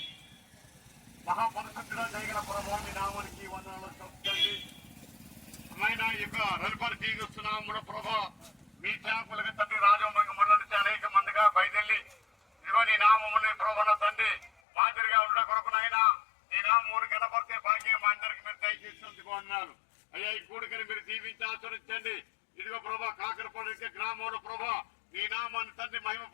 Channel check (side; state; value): right; drops out; at 14.5 s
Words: మహాపరిశుద్ధుడా జయగల ప్రభువాని నామానికి వందనాలు చెప్తండి. అమ్మాయిన యొక్క రవిపరి తీరుస్తున్నాము ప్రభా. మీ సేవకులుగా తండ్రి రాజవంగ మండలి నుంచి అనేక మందిగా బయలుదేరి ఇదిగో నీ నామముని ప్రభాన తండ్రి మాదిరిగా ఉండ కొరకునైనా నీ నామూరు కనపడితే భాగ్యం మా అందరికి మీరు దయచేసినందుకు అన్నారు. అయ్యా, ఈ కూడికని మీరు దీవించి ఆచరించండి. ఇదిగో ప్రభా, కాకరపాడు గ్రామంలో ప్రభా నీ నామాన్ని తండ్రి మహిమ